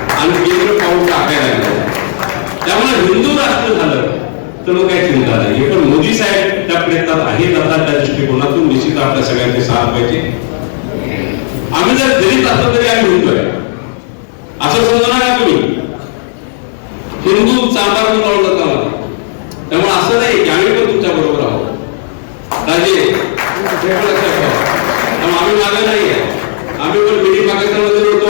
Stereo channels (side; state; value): right; silent; digital silence